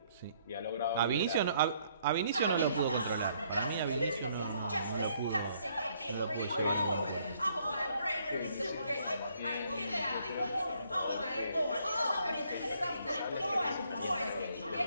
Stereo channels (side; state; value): both; inverted; correlation -0.67